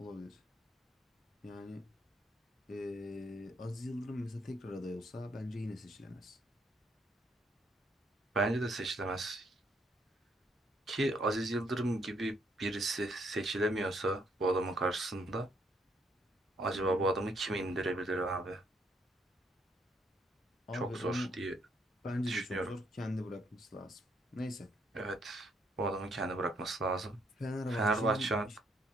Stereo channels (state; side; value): normal; both; correlation 0.71